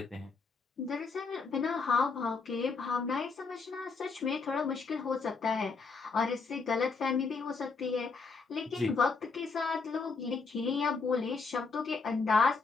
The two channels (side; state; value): right; quieter; 4.6 dB